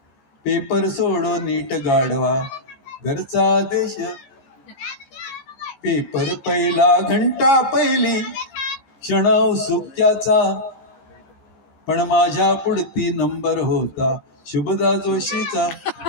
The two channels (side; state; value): right; late; 15 ms